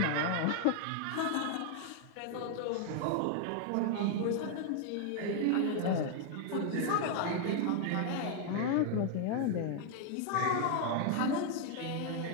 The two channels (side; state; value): both; different; correlation 0.00